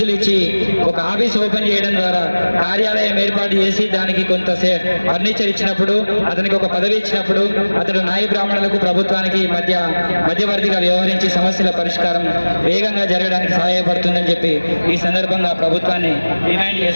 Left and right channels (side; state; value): both; inverted; correlation -1.00